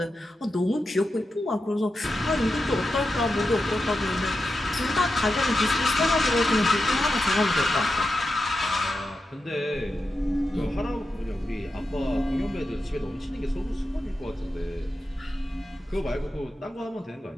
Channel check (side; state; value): both; normal; correlation 0.89